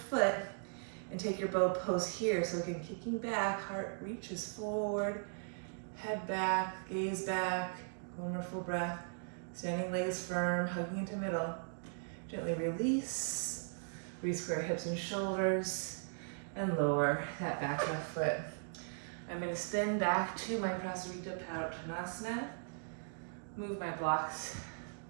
and take your bow pose here. So again, kicking back, heart reaches forward, head back, gaze back. One more full breath. Standing legs firm, hugging into middle. Gently release. Re-square hips and shoulders, and lower that back left foot. I'm going to spin back to my Prasarita Padottanasana. Move my blocks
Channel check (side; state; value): left; silent; digital silence